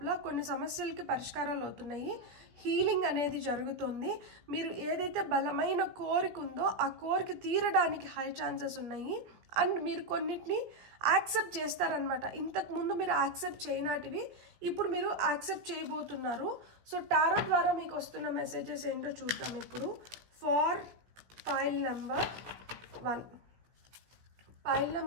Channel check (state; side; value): late; left; 17 ms